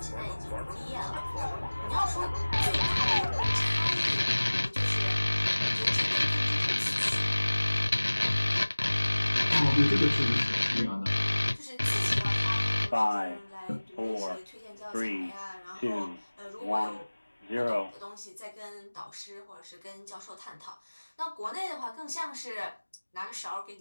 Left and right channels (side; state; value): both; inverted; correlation -1.00